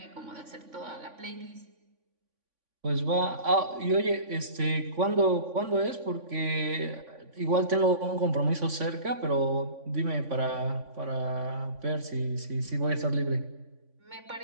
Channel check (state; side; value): late; left; 3.5 ms